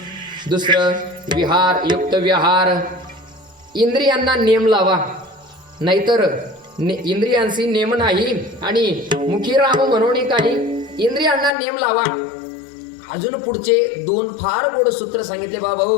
दुसरं विहार युक्त विहार. इंद्रियांना नेम लावा, नाहीतर इंद्रियांशी नेम नाही. आणि मुखी राम म्हणून काही इंद्रियांना नेम लावा. अजून पुढचे 2 फार गोड सूत्र सांगितले. बाबा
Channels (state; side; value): drops out; right; at 11.5 s